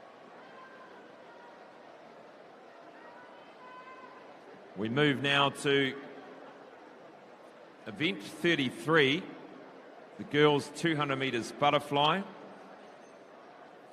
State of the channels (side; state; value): both; identical; correlation 1.00